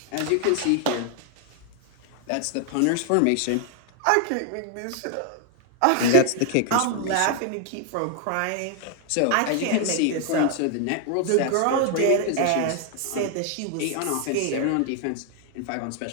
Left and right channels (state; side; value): different; both; correlation 0.00